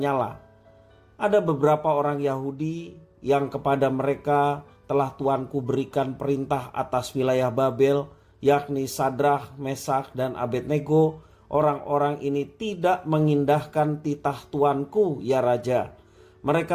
Ada beberapa orang Yahudi yang kepada mereka telah Tuanku berikan perintah atas wilayah Babel, yakni Sadrah, Mesak, dan Abednego. Orang-orang ini tidak mengindahkan titah Tuanku, ya Raja.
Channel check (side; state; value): both; identical; correlation 1.00